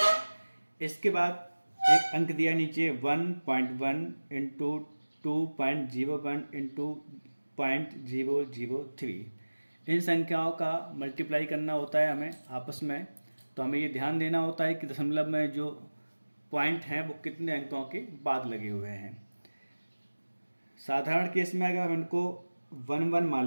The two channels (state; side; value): inverted; both; correlation -1.00